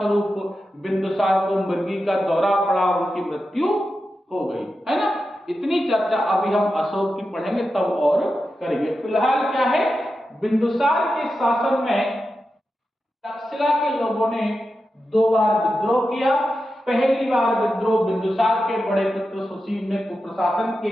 बिंदुसार को मृगी का दौरा पड़ा, उनकी मृत्यु हो गई, है ना। इतनी चर्चा अभी हम अशोक की पढ़ेंगे तब और करेंगे। फिलहाल क्या है, बिंदुसार के शासन में तक्षशिला के लोगों ने 2 बार विद्रोह किया। पहली बार विद्रोह बिंदुसार के बड़े पुत्र सुसीन ने कुप्रशासन के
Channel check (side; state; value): both; normal; correlation 0.90